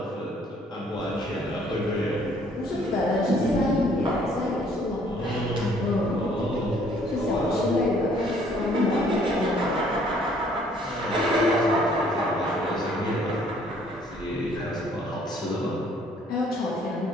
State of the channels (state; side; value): normal; both; correlation 0.61